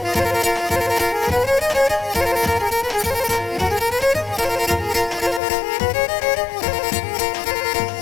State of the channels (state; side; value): drops out; right; at 5.4 s